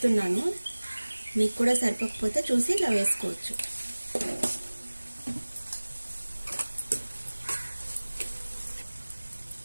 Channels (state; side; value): inverted; both; correlation -1.00